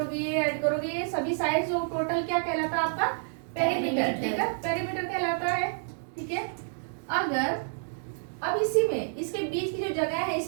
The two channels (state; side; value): silent; left; digital silence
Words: ये ऐड करोगे, ये सभी साइड्स जो टोटल क्या कहलाता है आपका? पेरीमीटर, ठीक है? पेरीमीटर कहलाता है, ठीक है? अगर अब इसी में इसके बीच की जो जगह है,